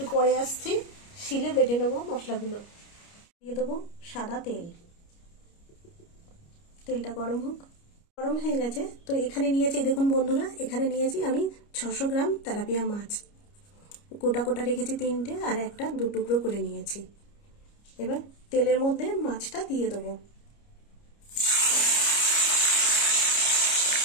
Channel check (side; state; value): right; late; 29 ms